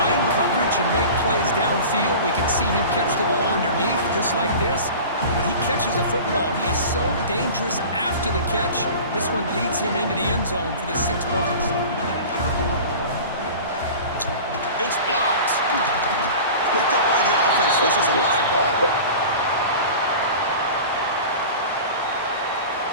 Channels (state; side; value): inverted; both; correlation -0.37